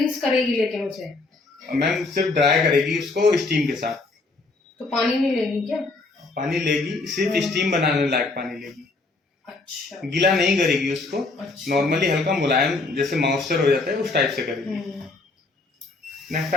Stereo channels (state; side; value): quieter; right; 3.5 dB